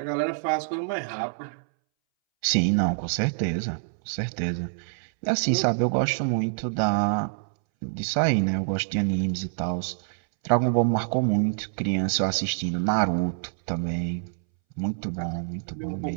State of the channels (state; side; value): silent; left; 61 dB below the other